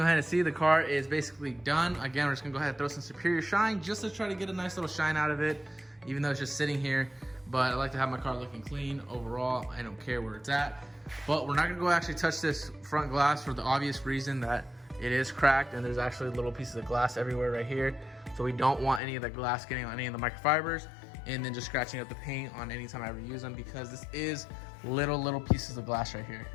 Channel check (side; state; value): right; drops out; at 19.0 s